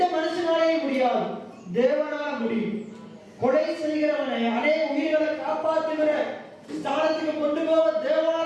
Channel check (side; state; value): both; identical; correlation 1.00